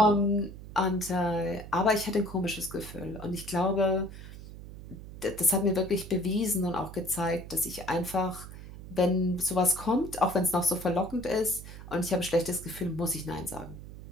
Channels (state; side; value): noise; right; hum, 13 dB below the sound